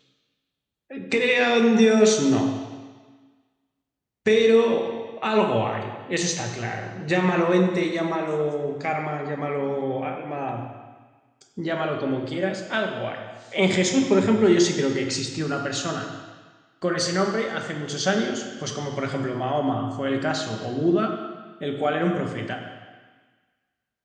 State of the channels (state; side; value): identical; both; correlation 1.00